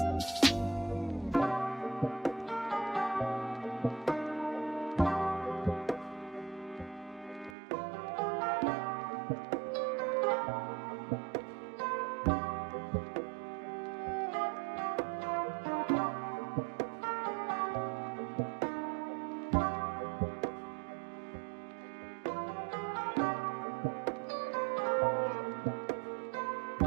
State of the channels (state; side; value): drops out; left; at 7.6 s